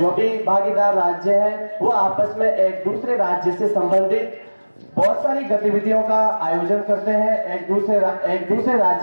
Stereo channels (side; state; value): both; inverted; correlation -1.00